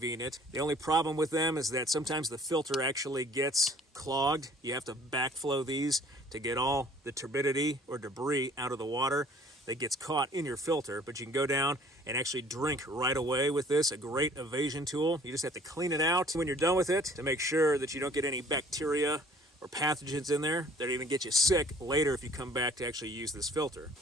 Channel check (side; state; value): both; normal; correlation 0.54